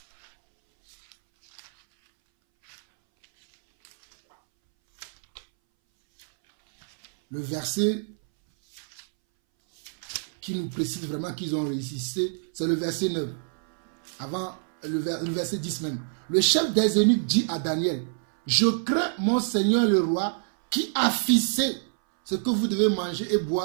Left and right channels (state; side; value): silent; left; 61 dB below the other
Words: le verset qui nous précise vraiment qu'ils ont résisté, c'est le verset 9. Avant, le verset 10 même. Le chef des eunuques dit à Daniel, « Je crains mon Seigneur le roi qui a fixé ce que vous devez manger et